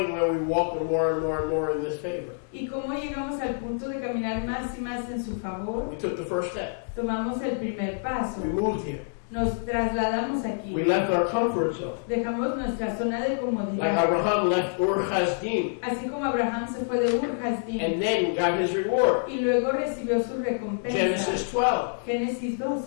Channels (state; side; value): silent; right; digital silence